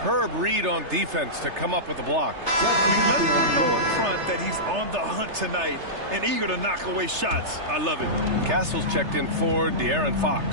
read on defense to come up with the block. I mean, let him know up front that he's on the hunt tonight and eager to knock away shots. I love it. Castle's checked in for De'Aaron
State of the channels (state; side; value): late; left; 3.3 ms